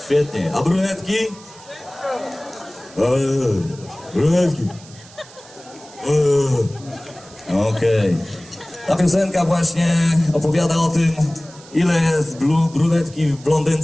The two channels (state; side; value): noise; right; hiss, 22 dB below the sound